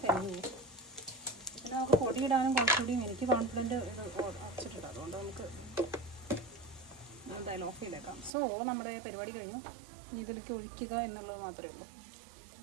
കഴിഞ്ഞു പോകും. പിന്നെ നമുക്ക് പൊടിയിടാനും കുറച്ചുകൂടിയും എനിക്ക് കോൺഫിഡൻറ്റ് ഇത് അടച്ചിട്ടിട്ട്, അതുകൊണ്ട് നമുക്ക് എന്തായാലും ഓഫ് ചെയ്തേക്കാം. സോ നമ്മുടെ പരിപാടി കഴിഞ്ഞു. ഇതിലേക്ക് ഒഴിക്കുക എന്നുള്ളത് മാത്രമേ ഉള്ളൂ.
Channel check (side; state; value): left; drops out; at 8.3 s